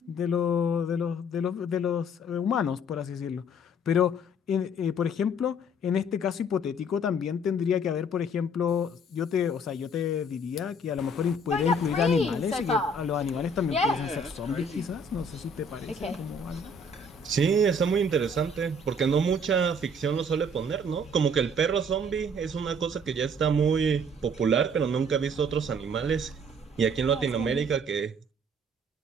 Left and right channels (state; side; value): normal; both; correlation 0.58